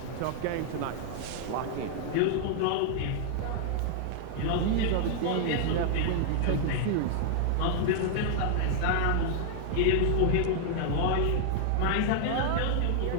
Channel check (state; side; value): different; both; correlation -0.01